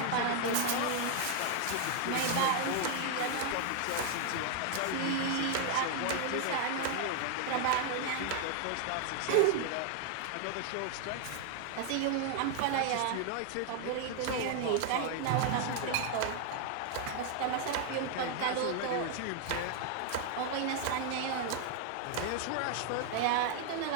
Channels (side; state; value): both; different; correlation 0.00